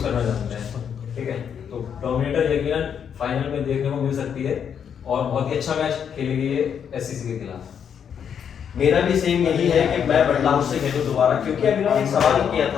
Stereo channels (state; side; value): quieter; right; 7.9 dB